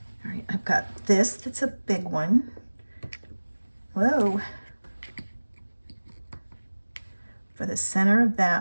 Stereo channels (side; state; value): both; inverted; correlation -1.00